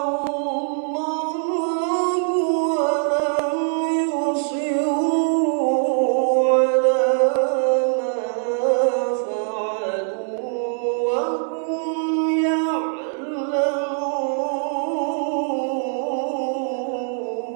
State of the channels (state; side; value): silent; left; 64 dB below the other